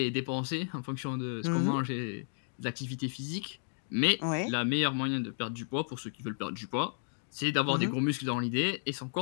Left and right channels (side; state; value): right; silent; digital silence